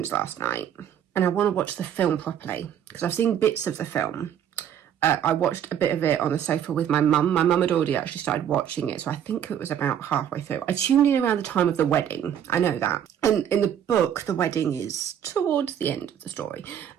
last night and I want to watch the film properly because I've seen bits of the film. I watched a bit of it on the sofa with my mum. My mum had already actually started watching it, so I think it was about halfway through. I tuned in around the time of the wedding. I know that. And in the book, the wedding is towards the end of the story.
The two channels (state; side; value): quieter; left; 9.5 dB